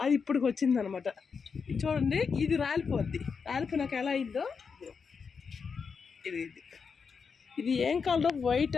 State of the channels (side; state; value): right; quieter; 5.7 dB